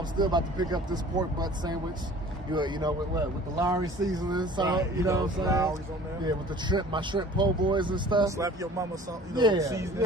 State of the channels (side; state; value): both; normal; correlation 0.47